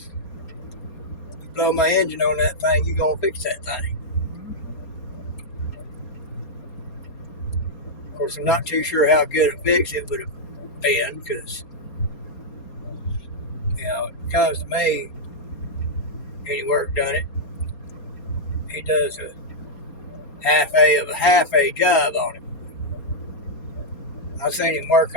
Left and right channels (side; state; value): right; late; 4.3 ms